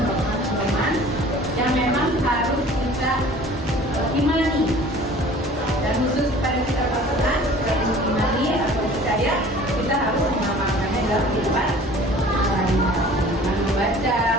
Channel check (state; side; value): normal; both; correlation 0.47